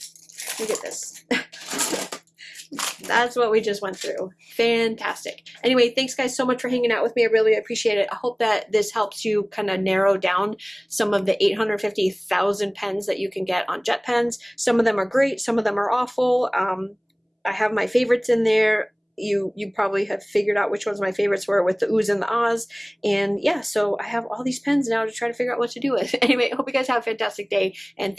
Look at this. That's what we just went through. Fantastic. Anyway, thanks guys so much for hanging out with me. I really appreciate it. I hope that this helps you kind of narrow down some of the 850,000 pens that you can get on Jet Pens. Some of them are great. Some of them are awful. I have my favorites in there. You probably have figured out which ones my favorites were with the oohs and the ahs. And yeah, so I have all these pens now to try to figure out what to do with. Anyway, I hope you guys have a fantastic day. And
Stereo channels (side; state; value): both; identical; correlation 1.00